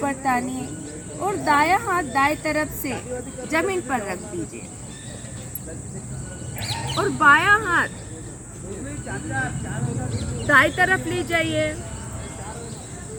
तानिए और दायां हाथ दाएं तरफ से जमीन पर रख दीजिए और बायां हाथ दाएं तरफ ले जाइए।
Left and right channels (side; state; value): both; identical; correlation 1.00